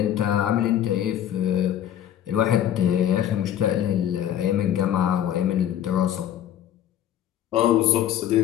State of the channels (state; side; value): quieter; right; 10.8 dB